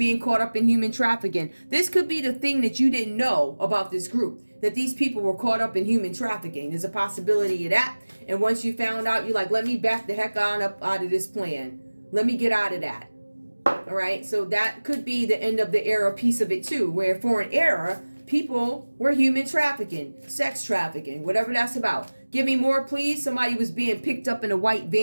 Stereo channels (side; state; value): both; inverted; correlation -1.00